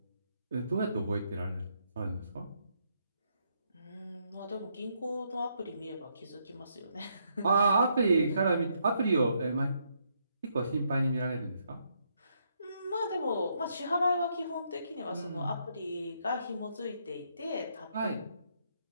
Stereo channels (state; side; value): inverted; both; correlation -0.75